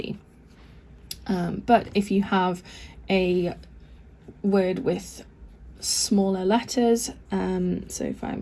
But if you have a word with smaller letters, so if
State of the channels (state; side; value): identical; both; correlation 1.00